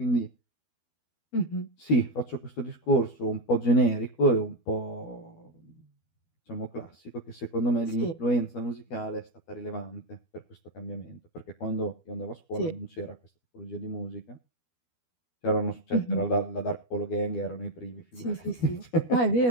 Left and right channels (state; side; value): late; right; 12 ms